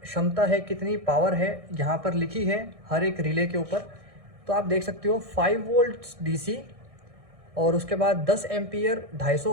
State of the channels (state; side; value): late; left; 1.6 ms